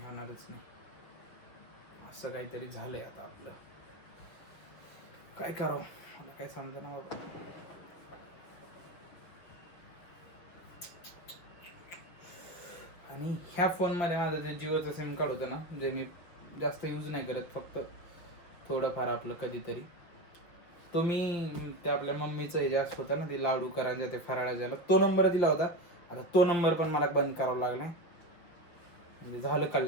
होणारच नाही. असं काहीतरी झालंय आता आपलं, काय करावं मला काय समजना बाबा. आणि ह्या फोनमध्ये माझं जे जिओचं सिम कार्ड होतं ना, जे मी जास्त यूज नाही करत, फक्त थोडंफार आपलं कधीतरी, तो मी ते आपल्या मम्मीचं हे जास्त होतं ना, ते लाडू करायचं, ते फराळा द्यायला, तो नंबर दिला होता. आता तो नंबर पण मला बंद करावा लागला, म्हणजे झालं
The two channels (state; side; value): late; right; 6.1 ms